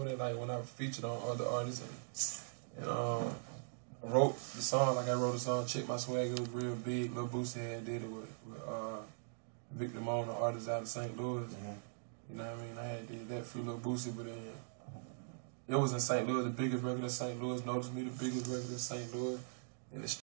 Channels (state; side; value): silent; left; digital silence